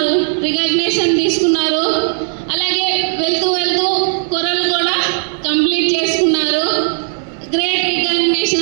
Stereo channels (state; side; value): silent; left; 69 dB below the other